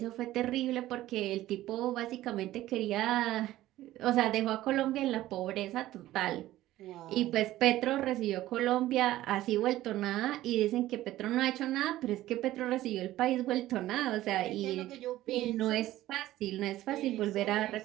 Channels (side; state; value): left; quieter; 15.1 dB